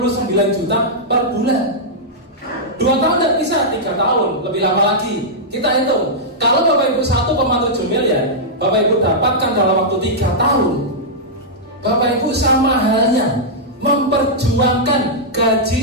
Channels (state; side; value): normal; both; correlation -0.09